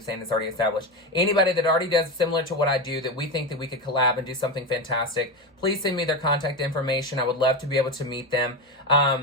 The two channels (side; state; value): both; normal; correlation 0.17